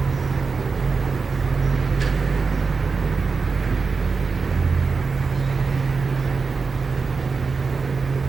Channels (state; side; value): quieter; left; 4.8 dB